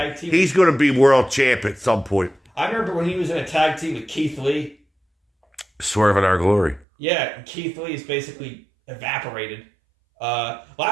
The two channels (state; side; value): drops out; left; at 6.9 s